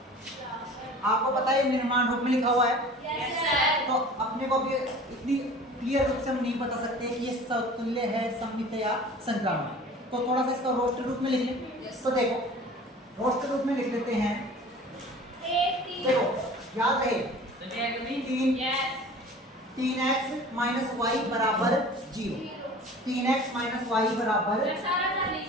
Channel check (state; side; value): normal; both; correlation 0.43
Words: आपको पता है निर्माण रूप में लिखा हुआ है, तो अपने को भी इतनी क्लियर रूप से हम नहीं बता सकते कि ये समतुल्य है, सममित या संक्रामक। तो थोड़ा सा इसका रोस्टर रूप में लिख लें। तो देखो रोस्टर रूप में लिख देते हैं। देखो याद रहे 3x माइनस वाई बराबर 0, 3x माइनस वाई बराबर